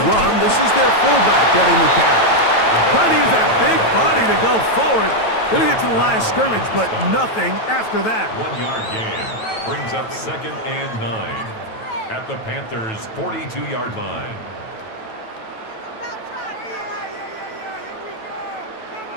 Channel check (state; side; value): late; right; 9.1 ms